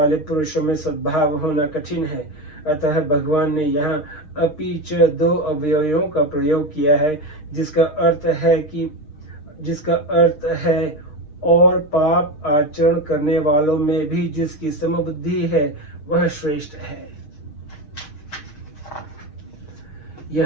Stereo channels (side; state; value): right; late; 6.4 ms